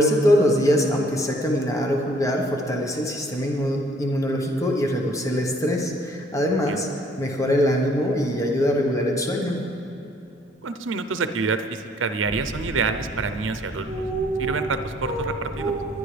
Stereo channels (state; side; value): normal; both; correlation 0.61